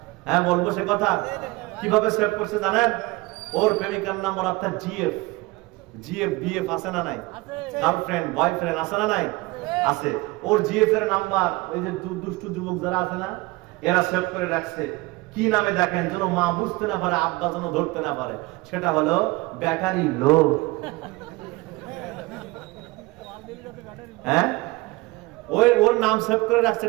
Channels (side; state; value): left; quieter; 22.6 dB